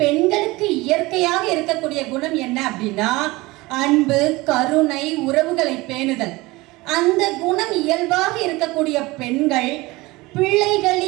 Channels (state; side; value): quieter; left; 21.5 dB